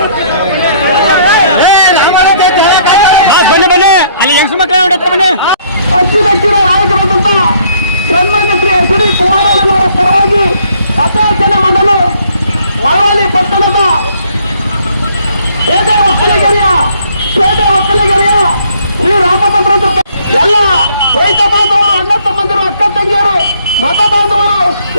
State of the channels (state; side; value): inverted; both; correlation -0.63